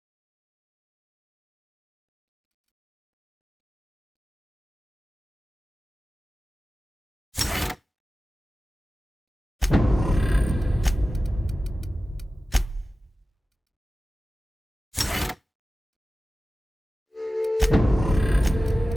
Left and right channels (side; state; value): both; normal; correlation 0.95